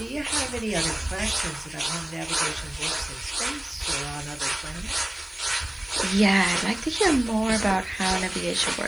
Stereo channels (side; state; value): left; noise; hiss, 25 dB below the sound